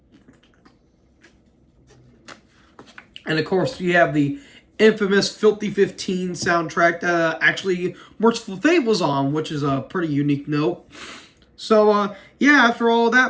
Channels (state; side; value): identical; both; correlation 1.00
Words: And of course, you have the infamous Filthy 15 soundtrack that actually Merciful Fate was on, which is a pretty unique note. So, after all